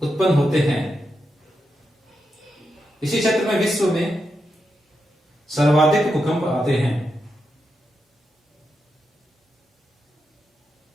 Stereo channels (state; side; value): normal; both; correlation 0.86